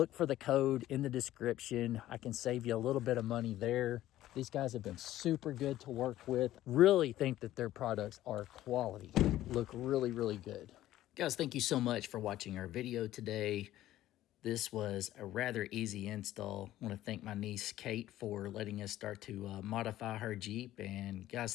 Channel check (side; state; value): right; quieter; 14.2 dB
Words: for the code in the description. I can save you a little bit of money there. These guys have been super good to work with. Really think that their products are quality. Look really, really good. Guys, thank you so much for watching our video today. This was a rather easy install. I want to thank my niece, Kate, for letting us start to modify her Jeep. And